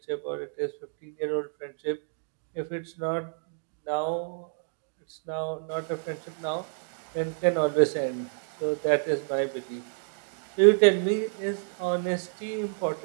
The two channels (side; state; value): left; silent; digital silence